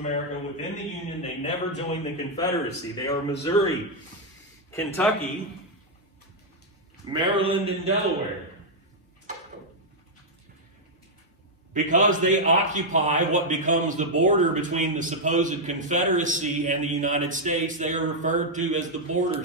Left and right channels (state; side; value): normal; both; correlation -0.03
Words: within the Union. They never joined the Confederacy. They are Missouri, Kentucky, Maryland, and Delaware. Because they occupy what becomes the border between the supposed Confederacy and the United States, they are referred to as the border